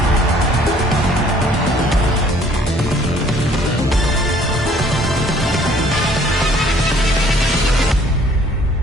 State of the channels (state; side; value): normal; both; correlation 0.58